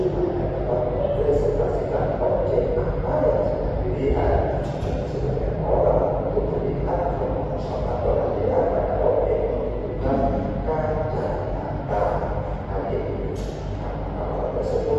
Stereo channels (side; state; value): both; identical; correlation 1.00